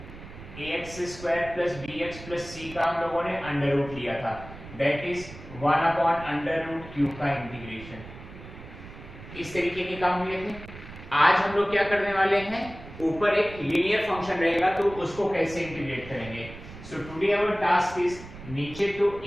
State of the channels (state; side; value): noise; right; rumble, 15 dB below the sound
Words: ax square plus bx plus c का हम लोगों ने under root लिया था, that is 1 upon under root q का integration. इस तरीके के काम हुए थे। आज हम लोग क्या करने वाले हैं, ऊपर एक लीनियर फंक्शन रहेगा तो उसको कैसे इंटीग्रेट करेंगे। So today our task is, नीचे तो